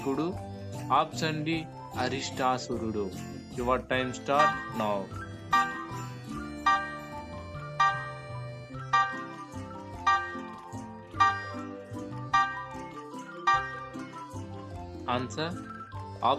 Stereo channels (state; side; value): identical; both; correlation 1.00